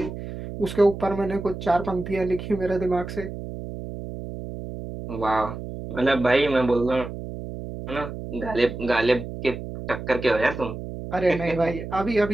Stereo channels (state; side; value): noise; right; hum, 9 dB below the sound